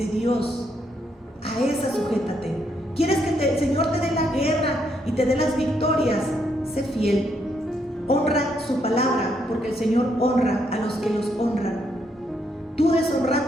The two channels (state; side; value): normal; both; correlation 0.75